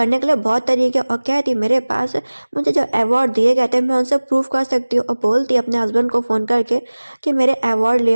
के लिए बहुत तरीके, और कहती मेरे पास मुझे जो अवार्ड दिए गए थे मैं उनसे प्रूफ कर सकती हूँ। और बोलती अपने हस्बैंड को फ़ोन करके कि मेरे अवार्ड ले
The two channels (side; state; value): both; inverted; correlation -1.00